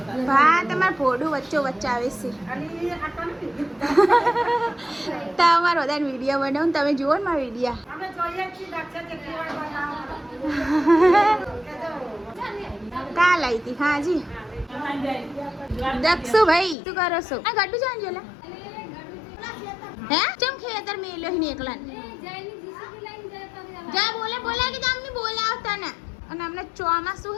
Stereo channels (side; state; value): right; drops out; at 16.8 s